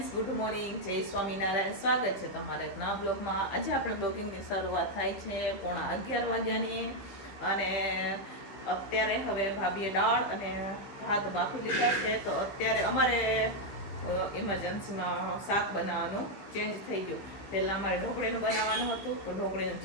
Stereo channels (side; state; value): right; late; 16 ms